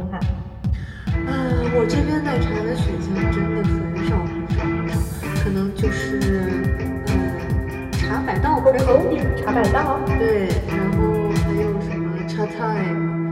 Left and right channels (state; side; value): identical; both; correlation 1.00